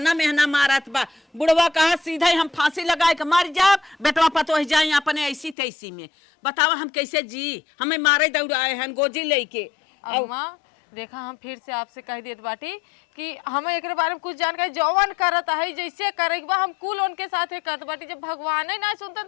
मेहना मारत बा, बुढ़वा कहा सीधा ही हम फांसी लगाए के मर जाब, बेटवा पतो ही जाए अपने ऐसी तैसी में। बतावा हम कैसे जी, हमें मारे दौड़ाए हैं गोजी लेके। अम्मा देखा हम फिर से आपसे कह देत बाटी कि हमें एक बारे में कुछ जानकारी जौवन करत है जैसे करे हम कुल उनके साथ करत बाटी, जब भगवान ही ना सुनते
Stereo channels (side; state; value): right; drops out; at 5.6 s